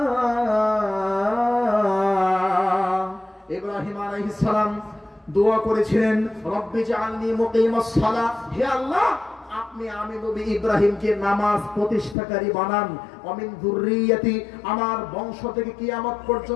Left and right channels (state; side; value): drops out; right; at 12.2 s